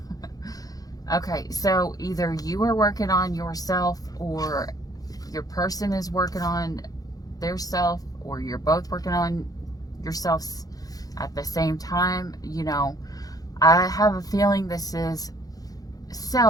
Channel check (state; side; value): late; right; 0.18 ms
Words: Okay, so either you are working on yourself, or your person is working on their self, or you're both working on yourselves at the same time. You know, I have a feeling this is